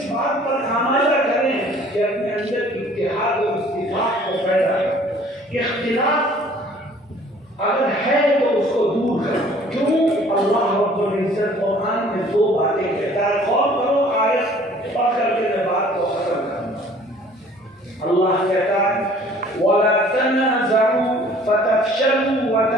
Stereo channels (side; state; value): both; normal; correlation 0.53